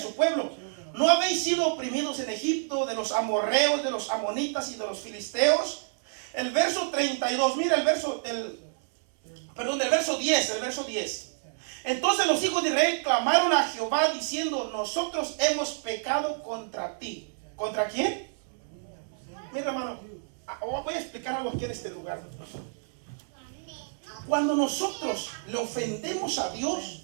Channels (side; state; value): left; silent; 59 dB below the other